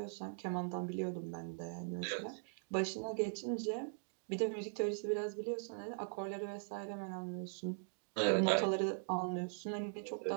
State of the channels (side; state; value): left; silent; digital silence